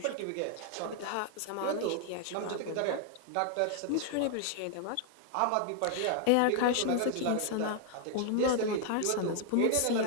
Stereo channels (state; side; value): different; both; correlation 0.00